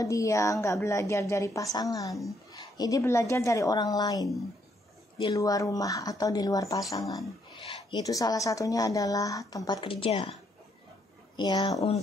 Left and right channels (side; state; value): both; normal; correlation 0.72